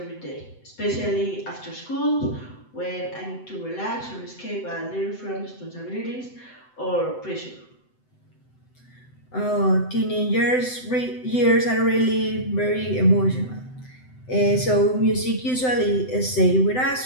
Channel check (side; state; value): right; late; 7.9 ms